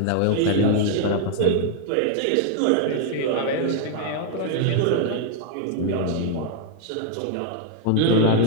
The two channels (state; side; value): different; both; correlation 0.00